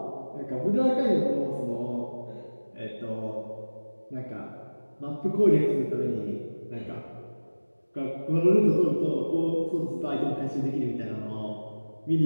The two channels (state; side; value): inverted; both; correlation -1.00